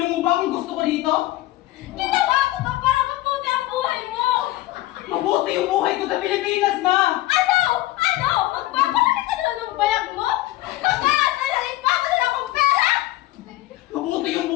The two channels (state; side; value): quieter; right; 16.9 dB